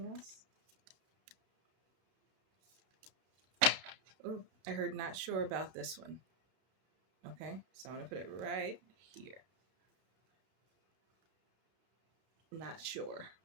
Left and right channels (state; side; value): late; left; 32 ms